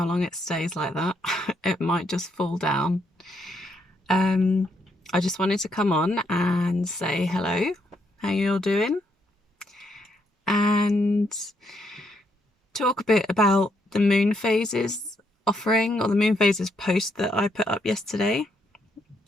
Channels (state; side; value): normal; both; correlation 0.75